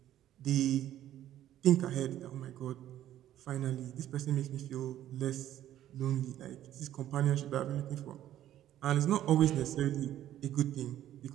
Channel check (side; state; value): left; quieter; 12.4 dB